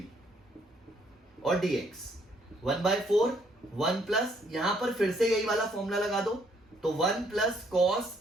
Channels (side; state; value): both; normal; correlation 0.68